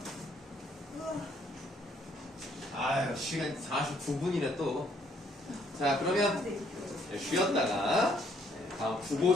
아유, 시간 49분이네 또. 자, 그러면 쉬었다가 다음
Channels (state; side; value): normal; both; correlation 0.67